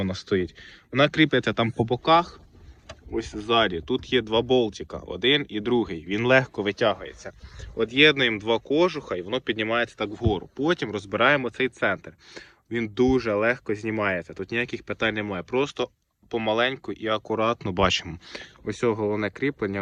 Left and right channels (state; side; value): identical; both; correlation 1.00